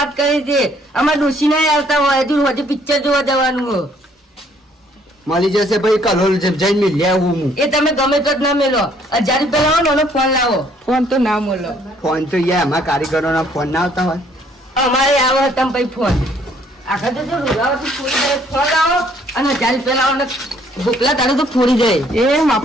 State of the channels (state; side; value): normal; both; correlation 0.64